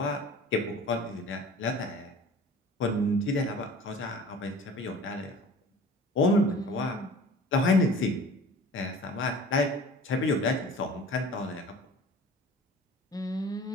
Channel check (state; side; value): normal; both; correlation 0.43